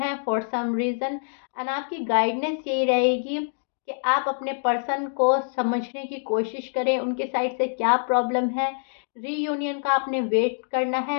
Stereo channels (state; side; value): silent; right; digital silence